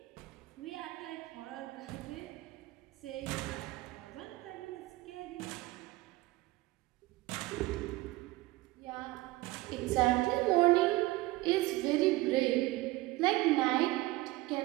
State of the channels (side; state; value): left; quieter; 19.6 dB